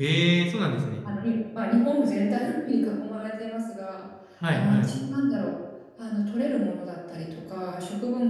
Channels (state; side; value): identical; both; correlation 1.00